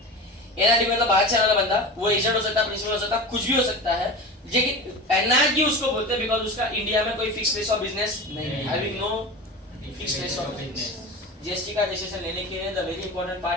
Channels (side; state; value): both; normal; correlation 0.30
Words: एनआरटी मतलब बाहर से आने वाला बंदा, वो एजेंट हो सकता है, प्रिंसिपल हो सकता है, कुछ भी हो सकता है, लेकिन एनआरटी उसको बोलते हैं बिकॉज़ उसका इंडिया में कोई फिक्स प्लेस ऑफ बिजनेस नहीं है, having no fix place of business. GST का रजिस्ट्रेशन लेने के लिए the very important